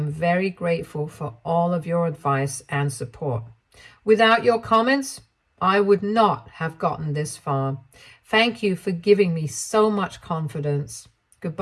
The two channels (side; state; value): both; identical; correlation 1.00